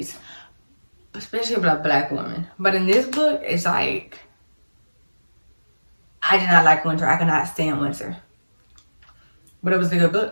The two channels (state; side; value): inverted; both; correlation -1.00